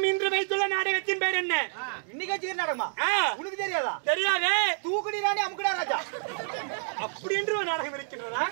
இன்று வைத்துள்ள நாடகத்தின் பேர் என்ன இன்னைக்கு வச்சுக்கிற நாடகமா உனக்கு தெரியாதா தெரியாதே தூக்குடி ராணி அமுக்குடா ராஜா அப்படி என்று ஒரு நாடகம் இருக்கின்றதா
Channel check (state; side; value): silent; left; digital silence